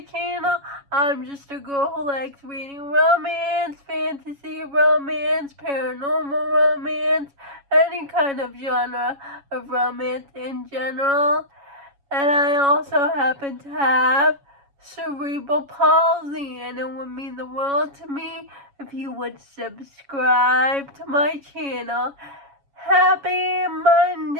channel. I'm just a girl who likes reading romance, fantasy romance, paranormal romance, any kind of genre of romance in general. And I also happen to have cerebral palsy, and it would mean the world to me if you would subscribe to my channel. Happy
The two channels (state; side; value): late; left; 7.2 ms